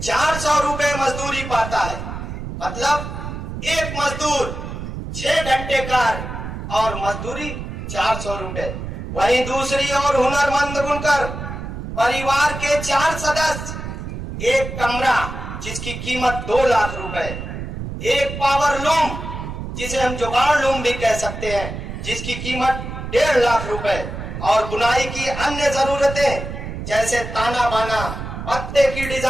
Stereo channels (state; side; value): noise; right; rumble, 7 dB below the sound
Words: 400 रुपए मजदूरी पाता है। मतलब एक मजदूर 6 घंटे कार्य और मजदूरी 400 रुपए। वहीं दूसरी ओर हुनरमंद बुनकर परिवार के 4 सदस्य, एक कमरा जिसकी कीमत 2 लाख रुपए, एक पावर लूम जिसे हम जुगाड़ लूम भी कह सकते हैं, जिसकी कीमत 1.5 लाख रुपए, और बुनाई की अन्य जरूरतें जैसे ताना बाना, पत्ते की